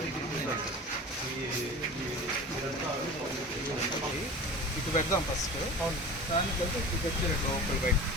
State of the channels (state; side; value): normal; both; correlation 0.35